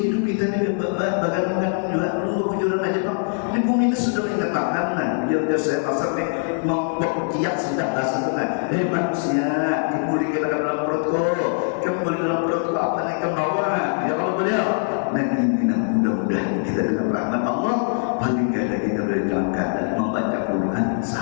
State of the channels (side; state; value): right; silent; digital silence